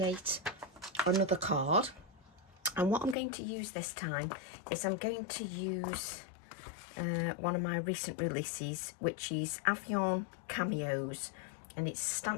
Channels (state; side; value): drops out; right; at 3.2 s